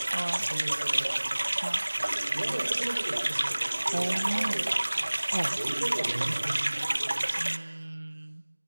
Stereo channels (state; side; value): inverted; both; correlation -1.00